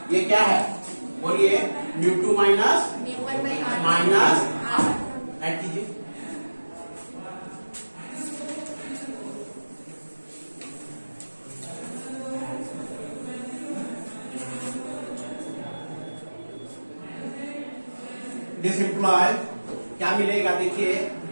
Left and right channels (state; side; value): inverted; both; correlation -1.00